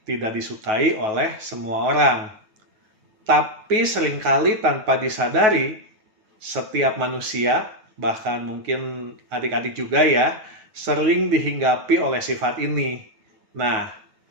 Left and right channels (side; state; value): left; late; 9.3 ms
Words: tidak disukai oleh semua orang. Tapi seringkali tanpa disadari, setiap manusia, bahkan mungkin adik-adik juga ya, sering dihinggapi oleh sifat ini. Nah,